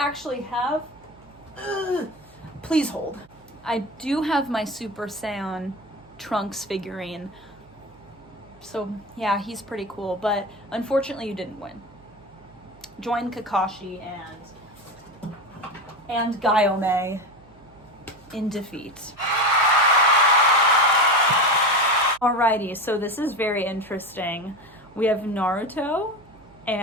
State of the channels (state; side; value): noise; right; hum, 27 dB below the sound